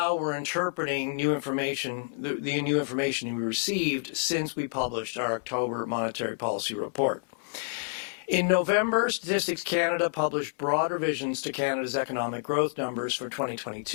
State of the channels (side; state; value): right; silent; 59 dB below the other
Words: we're interpreting new information, the new information we received since we published our October monetary policy report. In November, Statistics Canada published broad revisions to Canada's economic growth numbers for